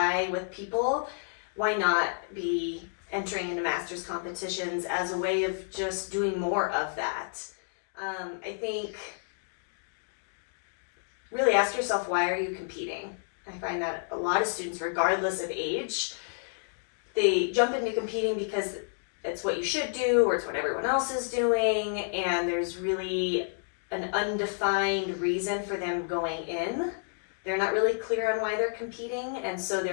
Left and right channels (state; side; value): silent; right; digital silence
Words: with people, why not be entering into masters competitions as a way of just doing more of that? I think really ask yourself, why are you competing? I find that a lot of students, regardless of age, they jump into competing because it's what you should do or it's what everyone else is doing, and there's really an undefined reason for them going in. They're not really clear on why they're competing, and so